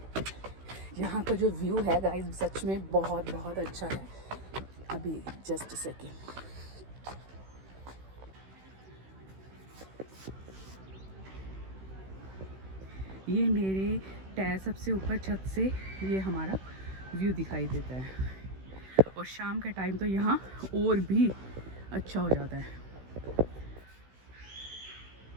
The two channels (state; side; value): late; left; 16 ms